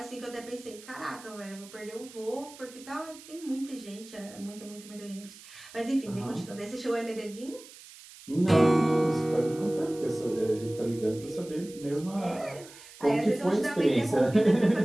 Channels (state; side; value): noise; right; hiss, 19 dB below the sound